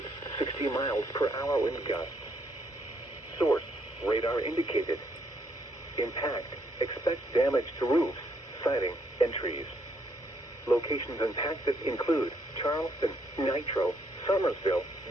60 miles per hour wind gusts. Source, radar indicated. Impact, expect damage to roofs, siding, and trees. Locations impacted include Charleston, Nitro, Somersville,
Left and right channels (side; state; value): both; normal; correlation 0.72